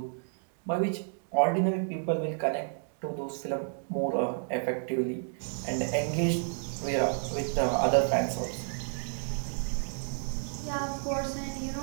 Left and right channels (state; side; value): silent; left; digital silence